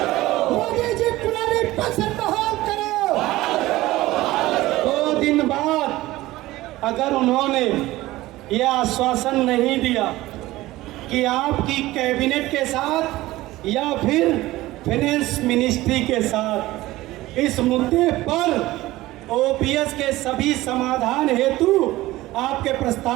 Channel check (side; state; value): left; quieter; 17.6 dB